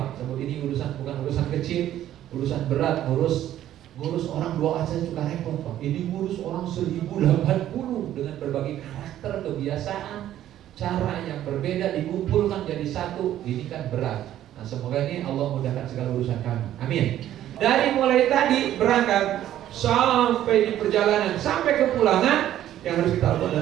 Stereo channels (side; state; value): left; quieter; 12.2 dB